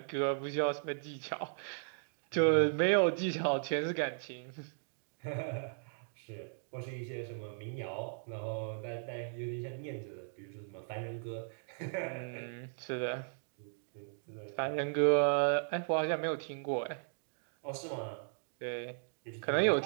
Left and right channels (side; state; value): left; silent; digital silence